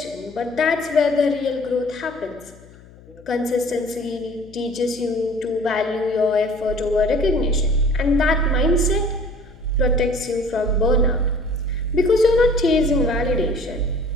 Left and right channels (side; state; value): left; noise; hum, 23 dB below the sound